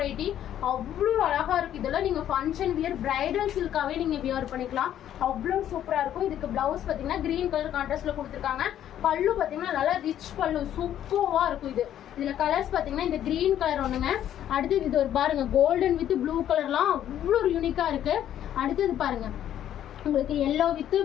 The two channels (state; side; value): quieter; right; 11.0 dB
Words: அவ்வளோ அழகா இருக்கு. இதெல்லாம் நீங்க ஃபங்க்ஷன் வியர் பிரைடல் சில்காவே நீங்க வியர் பண்ணிக்கலாம். அவ்வளோ சூப்பரா இருக்கும். இதுக்கு பிளவுஸ் பாத்தீங்கன்னா கிரீன் கலர் கான்ட்ராஸ்ட்ல கொடுத்துருக்காங்க. பல்லு பாத்தீங்கன்னா நல்லா ரிச் பல்லு சூப்பர்வா இருக்கும். இதுல கலர்ஸ் பாத்தீங்கன்னா இந்த கிரீன் கலர் ஒண்ணுங்க. அடுத்தது இது ஒரு பாருங்க கோல்டன் வித் ப்ளூ கலர்லாம் அவ்வளோ யூனிக்கா இருக்கு. அடுத்தது பாருங்க உங்களுக்கு yellow with